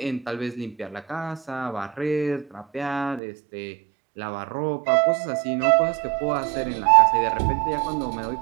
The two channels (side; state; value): left; drops out; at 3.2 s